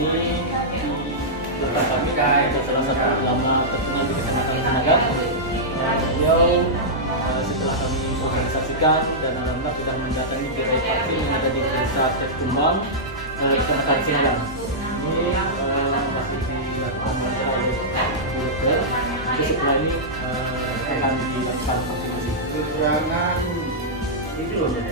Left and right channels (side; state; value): both; normal; correlation -0.11